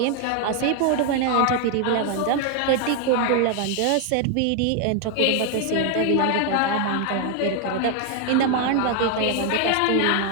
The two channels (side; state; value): both; different; correlation 0.01